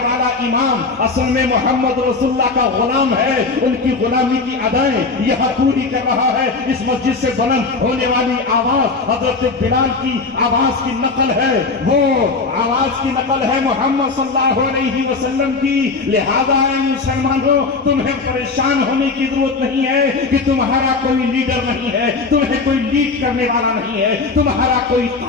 والا امام اصل میں محمد رسول اللہ کا غلام ہے، ان کی غلامی کی ادائیں یہاں پوری کر رہا ہے، اس مسجد سے بلند ہونے والی آواز حضرت بلال کی آواز کی نقل ہے، وہ آواز کی نقل ہے محمد صلی اللہ علیہ وسلم کی، لہذا اے مسلمانوں تمہیں پریشان ہونے کی ضرورت نہیں ہے کہ تمہارا کوئی لیڈر نہیں ہے، تمہیں کوئی لیڈ کرنے والا نہیں ہے، تمہارا کوئی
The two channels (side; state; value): right; quieter; 4.1 dB